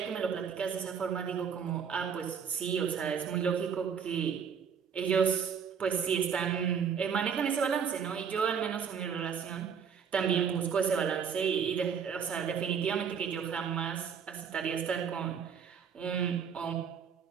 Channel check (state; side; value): quieter; left; 7.1 dB